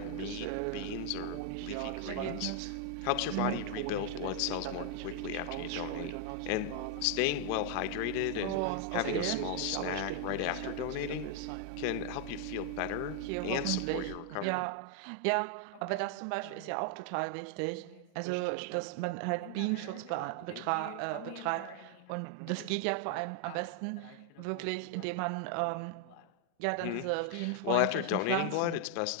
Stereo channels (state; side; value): different; both; correlation 0.00